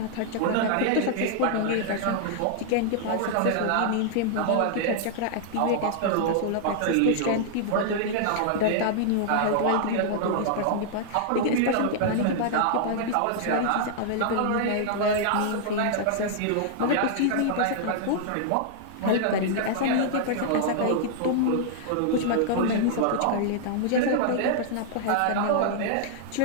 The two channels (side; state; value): both; different; correlation -0.01